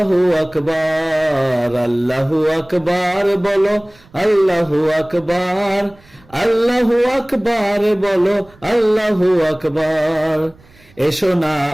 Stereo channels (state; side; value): noise; right; rumble, 28 dB below the sound